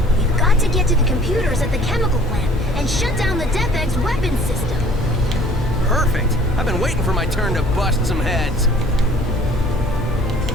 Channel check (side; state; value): both; normal; correlation 0.53